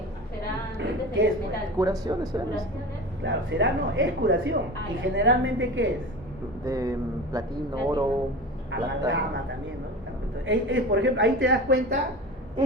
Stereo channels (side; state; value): both; normal; correlation 0.31